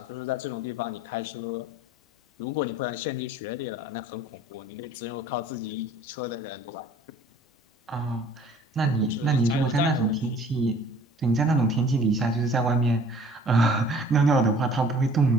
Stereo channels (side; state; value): both; normal; correlation 0.51